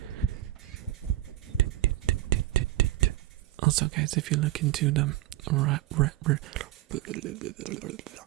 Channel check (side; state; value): left; quieter; 15.2 dB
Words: Also, guys, if you look into the